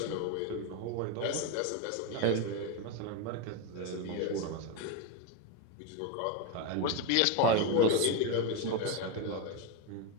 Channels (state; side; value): different; both; correlation 0.03